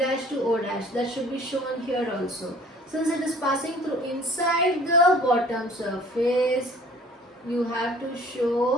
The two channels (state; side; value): normal; both; correlation 0.51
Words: to O dash. That should be shown here also. Since it is passing through inside the bottom surface, you have to